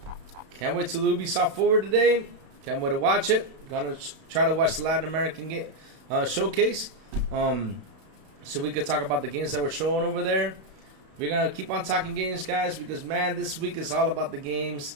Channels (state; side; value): late; left; 32 ms